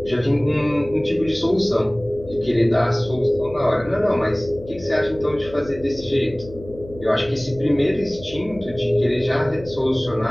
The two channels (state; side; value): noise; left; hum, 17 dB below the sound